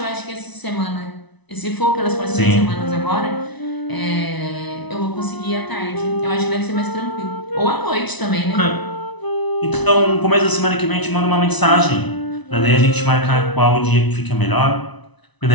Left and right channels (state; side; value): late; right; 1.0 ms